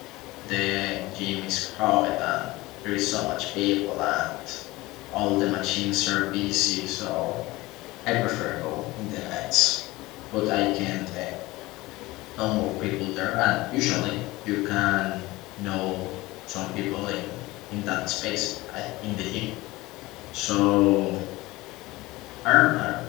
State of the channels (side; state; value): right; quieter; 20.1 dB